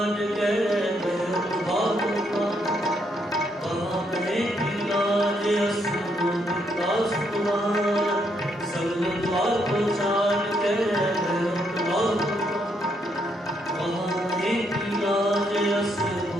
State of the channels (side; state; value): both; normal; correlation 0.75